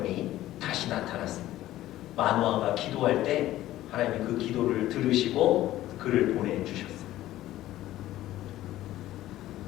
다시 나타났습니다. 마노아가 기도할 때 하나님이 그 기도를 들으시고 그를 보내주셨어요.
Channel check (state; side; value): quieter; right; 14.6 dB